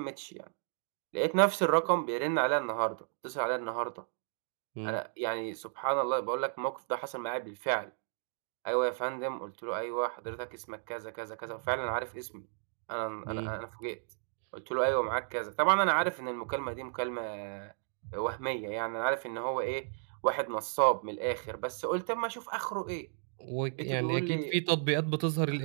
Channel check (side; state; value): left; silent; digital silence